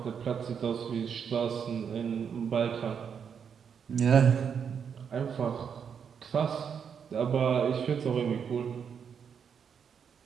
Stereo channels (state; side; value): quieter; left; 7.2 dB